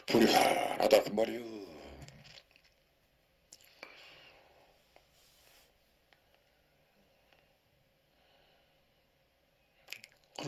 불이 환하다 그 말이요.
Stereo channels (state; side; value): identical; both; correlation 1.00